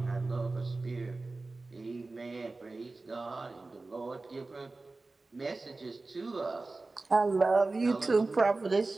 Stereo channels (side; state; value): left; quieter; 3.4 dB